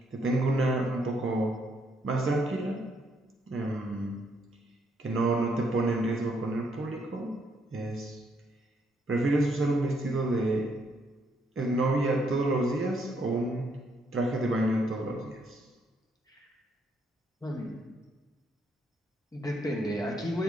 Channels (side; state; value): both; normal; correlation 0.73